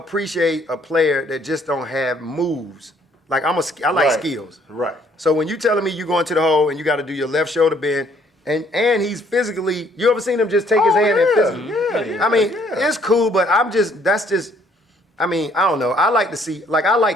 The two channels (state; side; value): normal; both; correlation 0.64